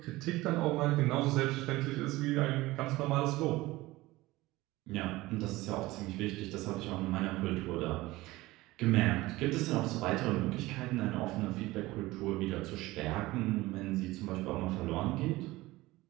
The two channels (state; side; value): quieter; left; 19.1 dB